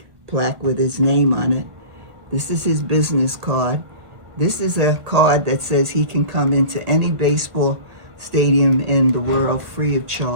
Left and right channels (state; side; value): late; left; 1.5 ms